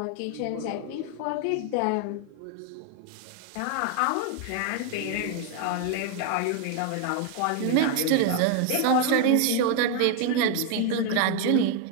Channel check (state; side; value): different; both; correlation 0.01